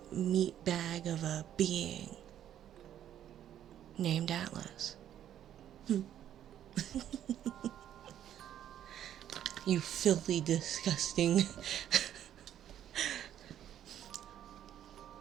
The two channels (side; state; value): left; quieter; 10.7 dB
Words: meat bag of a being named Atlas. You filthy, disgusting.